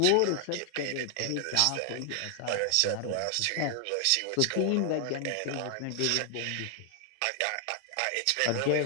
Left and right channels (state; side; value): different; both; correlation 0.00